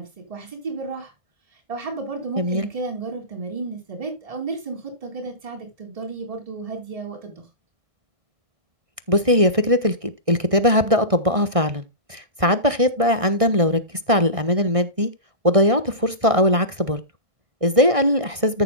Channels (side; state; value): left; late; 1.6 ms